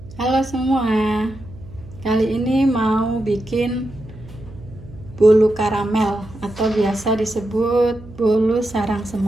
Halo semua, kali ini mau bikin bolu karamel atau biasa disebut bolu sarang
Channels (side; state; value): right; noise; hum, 18 dB below the sound